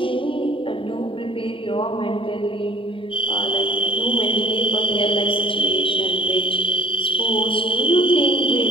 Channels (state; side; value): late; right; 0.25 ms